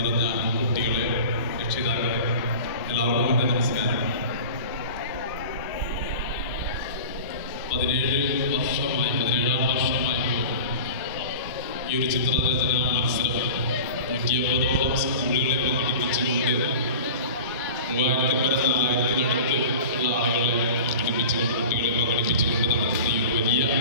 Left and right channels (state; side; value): inverted; both; correlation -0.36